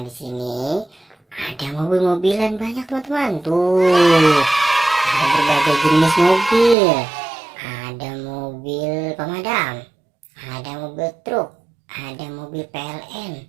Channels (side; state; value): left; drops out; at 6.8 s